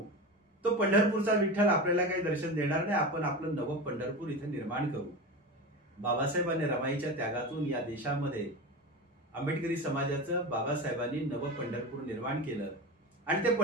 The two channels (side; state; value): both; normal; correlation 0.25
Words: तो पंढरपूरचा विठ्ठल आपल्याला काही दर्शन देणार नाही, आपण आपलं नवं पंढरपूर इथे निर्माण करू. बाबासाहेबांनी रमाईच्या त्यागातून या देशामध्ये आंबेडकरी समाजाचं बाबासाहेबांनी नवं पंढरपूर निर्माण केलं, आणि ते